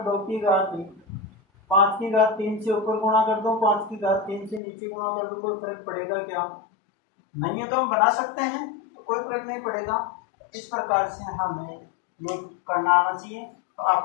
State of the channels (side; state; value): right; drops out; at 4.6 s